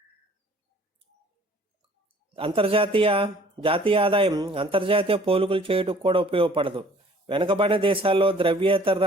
జాతీయ ఆదాయం అంతర్జాతీయ పోలికలు చేయడానికి కూడా ఉపయోగపడదు. వెనుకబడిన దేశాల్లో ద్రవ్యేతర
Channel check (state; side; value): normal; both; correlation 0.54